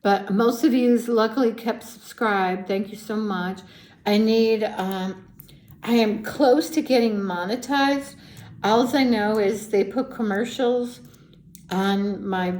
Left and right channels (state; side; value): identical; both; correlation 1.00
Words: but most of you luckily kept subscribed. Thank you so much. I am close to getting monetized. All I know is they put commercials on my